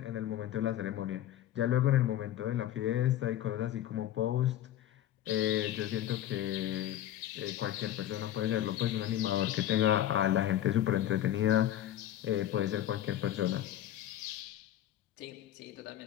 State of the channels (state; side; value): quieter; right; 12.2 dB